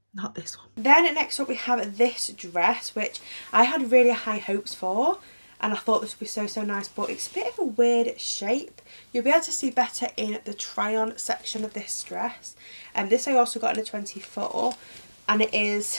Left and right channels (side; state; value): both; inverted; correlation -1.00